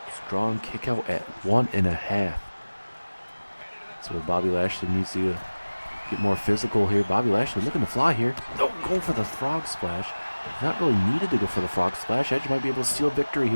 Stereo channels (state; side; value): inverted; both; correlation -1.00